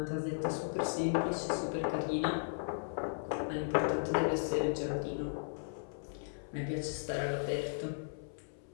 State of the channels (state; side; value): silent; right; 54 dB below the other